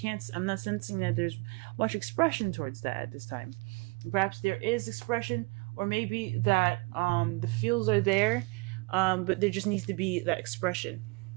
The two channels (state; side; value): quieter; left; 29.5 dB